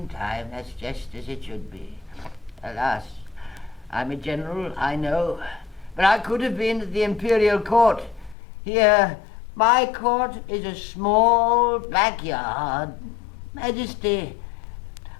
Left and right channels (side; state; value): right; drops out; at 8.3 s